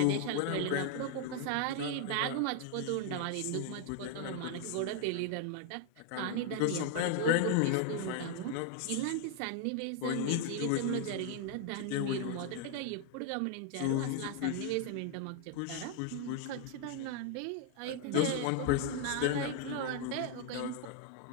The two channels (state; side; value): different; both; correlation 0.00